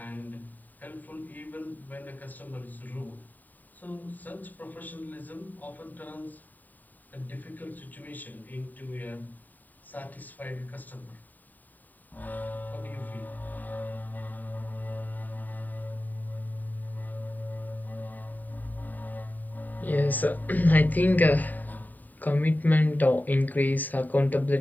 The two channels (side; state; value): right; late; 0.086 ms